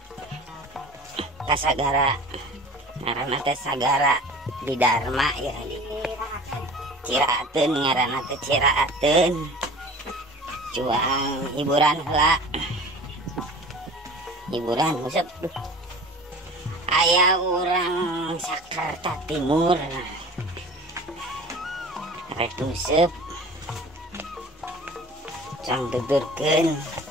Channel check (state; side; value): normal; both; correlation 0.41